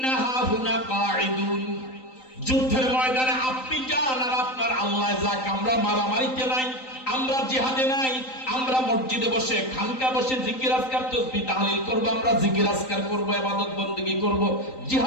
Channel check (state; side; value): late; right; 3.9 ms